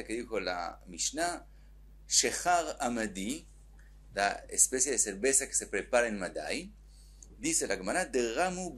que dijo la Mishnah. Shechar Amadi, la especie de cerveza que se prepara en Madai, dice la Gemara, Deramu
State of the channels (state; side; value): identical; both; correlation 1.00